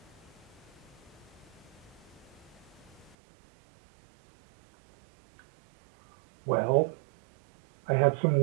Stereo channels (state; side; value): drops out; left; at 3.2 s